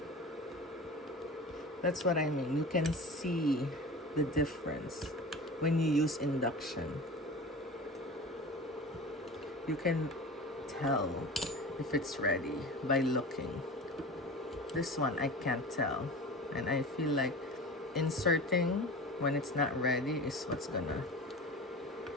That's what I mean. You can see the difference when you use induction. You can tell if it's ready by looking. This one I can't tell, and I feel like inserting when it's not ready is what's gonna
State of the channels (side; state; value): both; normal; correlation 0.34